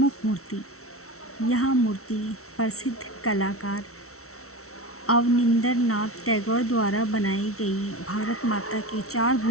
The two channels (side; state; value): right; late; 0.63 ms